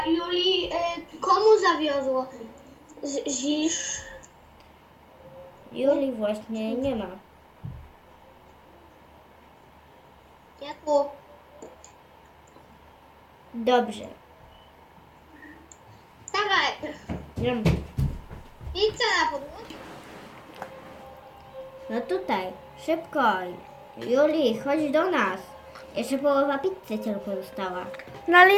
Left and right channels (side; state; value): both; identical; correlation 1.00